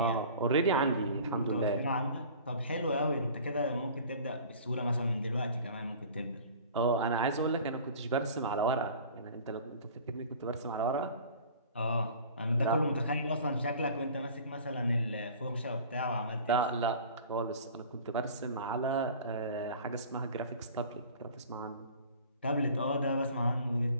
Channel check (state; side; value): inverted; both; correlation -0.44